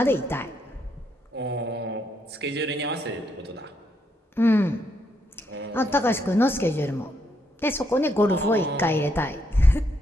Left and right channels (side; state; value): both; normal; correlation 0.76